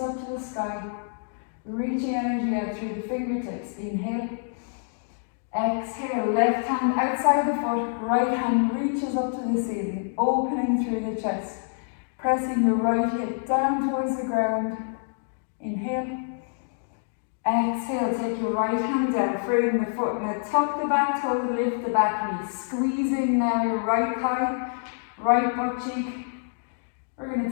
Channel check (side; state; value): right; silent; digital silence